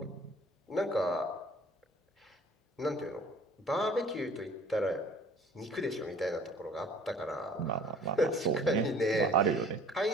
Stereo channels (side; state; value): both; normal; correlation 0.51